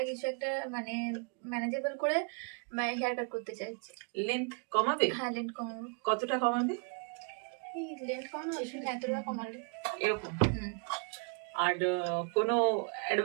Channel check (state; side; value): quieter; left; 37.9 dB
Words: কিছু একটা মানে ম্যানেজেবল করে হেয়ার কাট করতে চাইছি। লেন্থ কমাবে? হ্যাঁ, লেন্থ কমাবো। কতটা কমাবে? এই লেন্থ কমানো আসলে এতটা কমালে এরকম? আর কোনো